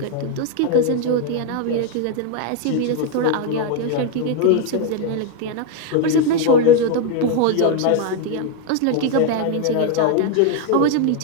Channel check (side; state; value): both; different; correlation 0.01